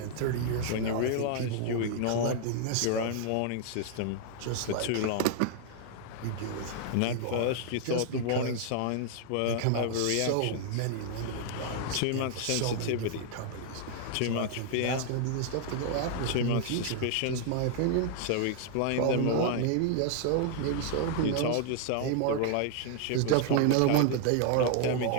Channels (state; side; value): different; both; correlation 0.00